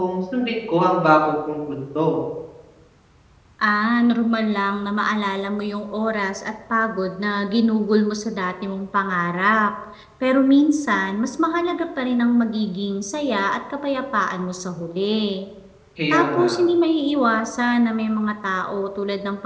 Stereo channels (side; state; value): both; identical; correlation 1.00